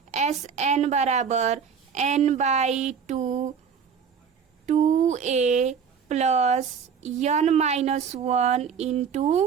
Sn बराबर n/2 2a plus n-1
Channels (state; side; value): quieter; left; 6.8 dB